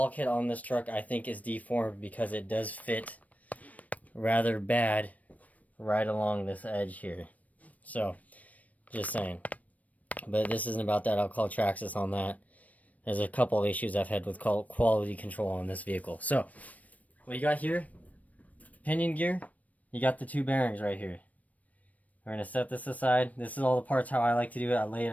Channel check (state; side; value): late; right; 0.071 ms